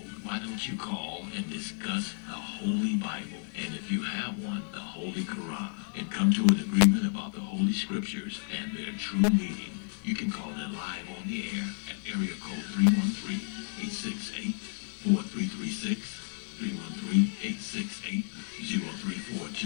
Why don't you call and discuss the Holy Bible, and if you have one, the Holy Quran, and come to an agreement about the Holy Scriptures and their true meaning? You can call in live on the air at area code 313-868-4336,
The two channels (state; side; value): silent; right; 57 dB below the other